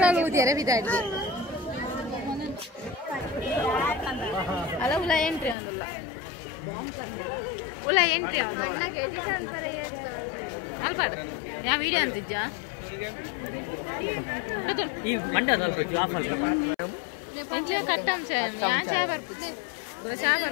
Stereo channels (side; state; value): right; drops out; at 5.6 s